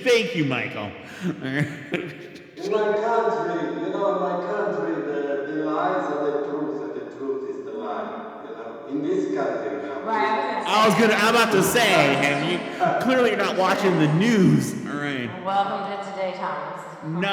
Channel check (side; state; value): both; identical; correlation 1.00